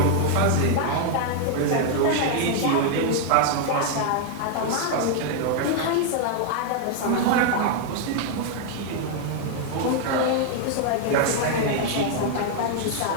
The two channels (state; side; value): different; both; correlation 0.00